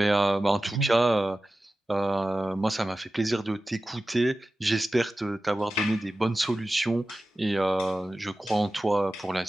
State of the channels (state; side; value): normal; both; correlation 0.95